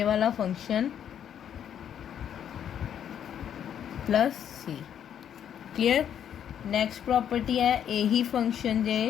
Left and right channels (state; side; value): quieter; right; 9.3 dB